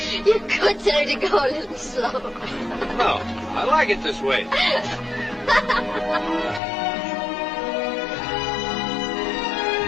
You could tell her to go a little slow. No, I like it this way.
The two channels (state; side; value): drops out; right; at 6.6 s